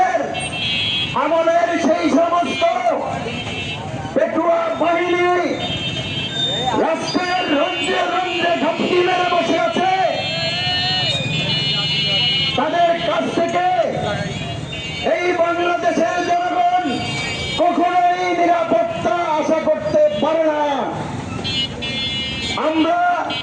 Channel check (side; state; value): both; identical; correlation 1.00